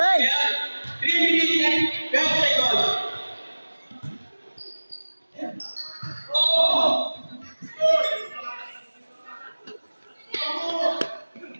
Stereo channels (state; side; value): inverted; both; correlation -1.00